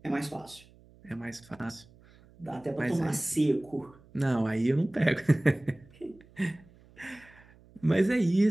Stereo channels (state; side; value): noise; right; hum, 26 dB below the sound